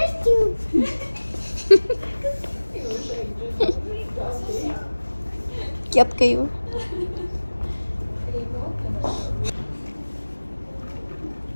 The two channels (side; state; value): both; inverted; correlation -1.00